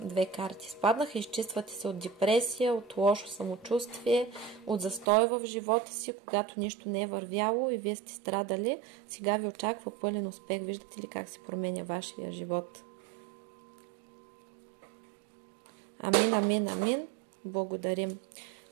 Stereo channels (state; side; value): drops out; left; at 5.1 s